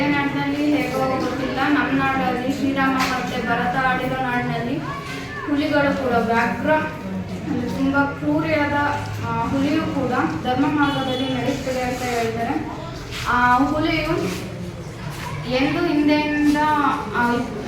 ನಾಡಿನಲ್ಲಿ ಹೇಗೋ ಗೊತ್ತಿಲ್ಲ, ನಮ್ಮ ನಾಡಲ್ಲಿ ಶ್ರೀರಾಮ ಮತ್ತು ಭರತ ಆಡಿರೋ ನಾಡಿನಲ್ಲಿ ಹುಲಿಗಳು ಕೂಡ ವ್ಯಾಘ್ರ ತುಂಬ ಕ್ರೂರಿಯಾದ ಹುಲಿಯು ಕೂಡ ಧರ್ಮ ಮಾರ್ಗದಲ್ಲಿ ನಡೆಯುತ್ತದೆ ಅಂತ ಹೇಳ್ತಾರೆ. ಆ ಹುಲಿಯು ಎಂದು ಹಿಂದೆಯಿಂದ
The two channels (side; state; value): both; identical; correlation 1.00